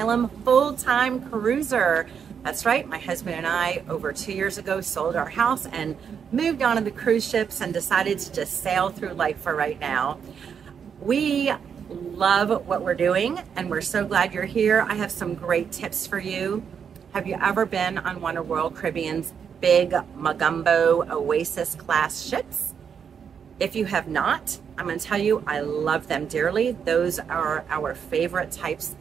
full-time cruiser. That's right, my husband and I over 2 years ago sold our house and moved on to the cruise ships and decided to just sail through life for right now. We love what we're doing and we're so glad you're here. I have some great tips for you. Have you ever been on one of Royal Caribbean's big Magumbo Oasis Class ships? If you have not, I'm going to tell you, I love them dearly. Those are our favorite types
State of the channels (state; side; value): quieter; left; 7.2 dB